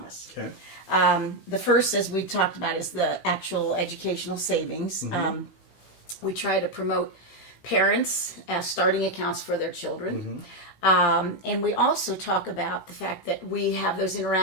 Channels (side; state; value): right; late; 16 ms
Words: Okay. The first, as we talked about, is the actual educational savings. We try to promote parents starting accounts for their children. And we also talk about the fact that we have those